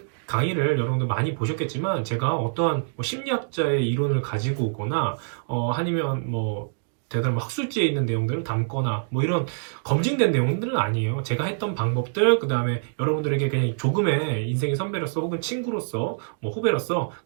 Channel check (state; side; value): silent; left; digital silence